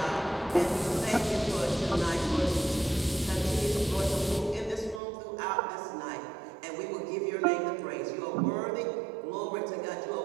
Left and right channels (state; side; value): drops out; left; at 5.0 s